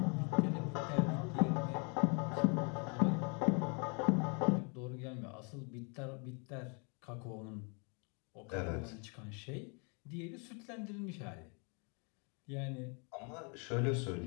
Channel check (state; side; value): quieter; right; 34.8 dB